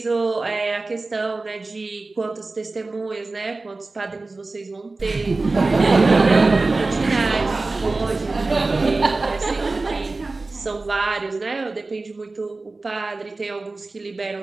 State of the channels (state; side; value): quieter; left; 3.4 dB